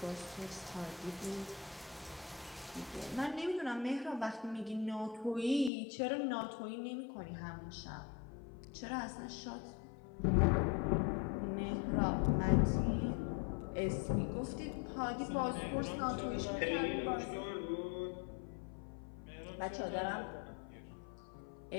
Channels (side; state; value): right; drops out; at 5.7 s